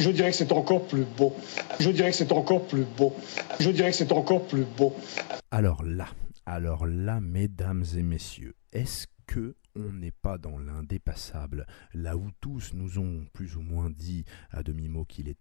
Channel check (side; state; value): right; silent; digital silence